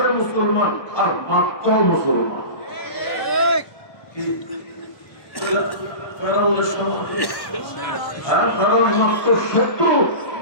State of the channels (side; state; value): right; late; 1.2 ms